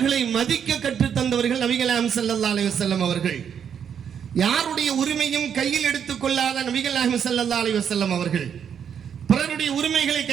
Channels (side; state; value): left; quieter; 8.0 dB